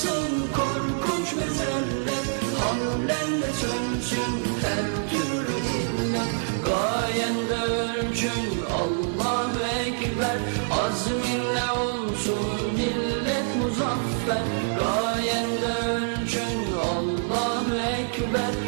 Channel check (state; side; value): silent; left; digital silence